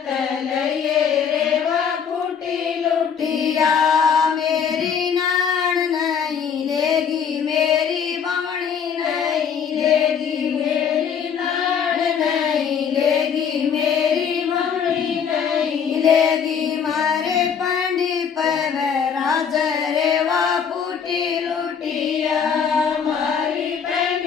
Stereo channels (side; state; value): right; quieter; 7.1 dB